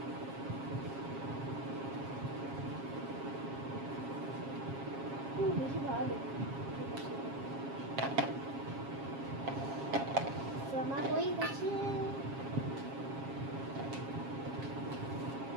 বেশি ভালো দেবো। ঠিক আছে, আমার হয়ে গেছে।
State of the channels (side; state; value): left; late; 7.3 ms